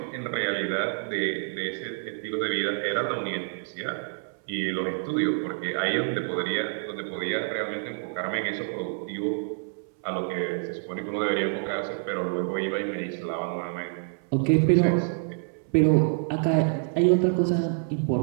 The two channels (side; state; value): left; silent; 60 dB below the other